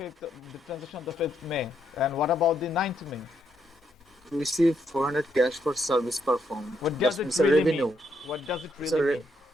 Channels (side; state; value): both; normal; correlation 0.76